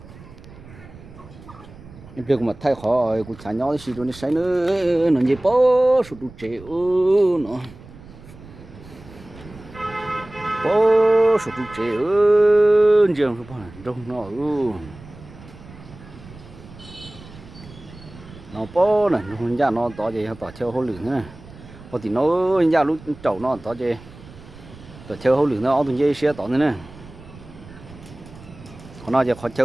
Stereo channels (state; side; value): noise; right; rumble, 19 dB below the sound